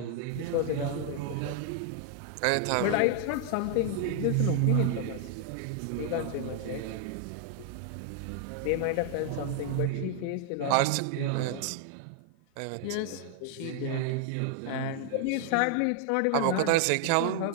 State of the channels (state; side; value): different; both; correlation 0.00